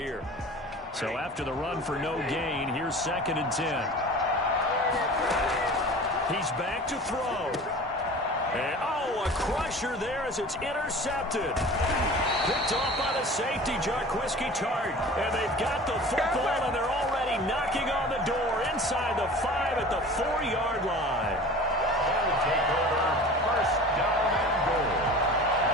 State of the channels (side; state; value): both; normal; correlation 0.40